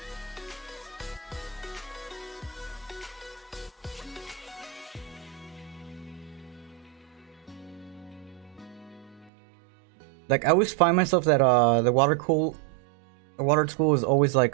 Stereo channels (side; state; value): left; drops out; at 9.3 s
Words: Like, I always find myself that the water tool is always like